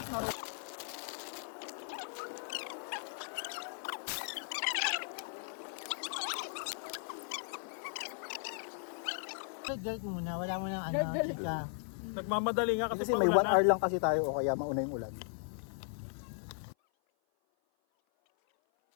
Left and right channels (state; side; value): silent; right; 53 dB below the other